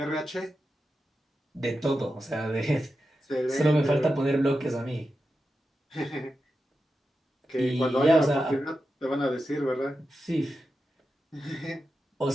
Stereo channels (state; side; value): normal; both; correlation 0.90